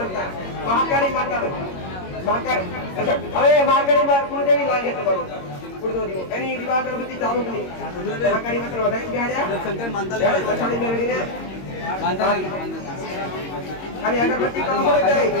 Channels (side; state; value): right; late; 22 ms